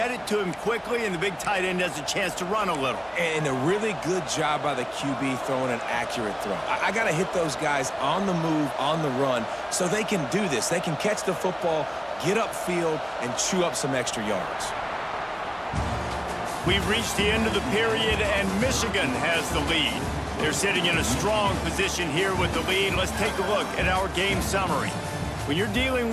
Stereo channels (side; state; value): both; identical; correlation 1.00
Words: it to him quickly, and the big tight end has a chance to run a little. And a really good job by the QB throwing an accurate throw. I got to hit those guys on the move, on the run, so they can do this. They can catch the football, get upfield, and chew up some extra yards. We've reached the end of the period, and Michigan has the lead. They're sitting in a strong position here with the lead. Let's take a look at our game summary. When you're dealing